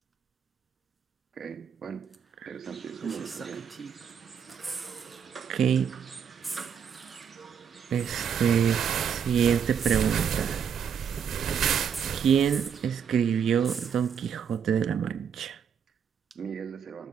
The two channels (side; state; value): left; quieter; 7.5 dB